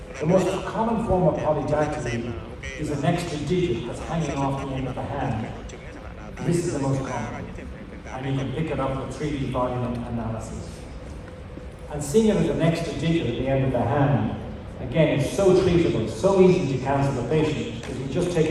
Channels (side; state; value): both; identical; correlation 1.00